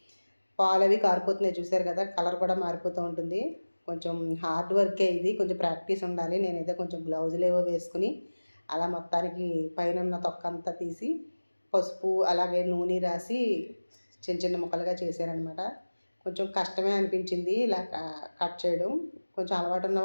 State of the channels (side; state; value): both; inverted; correlation -1.00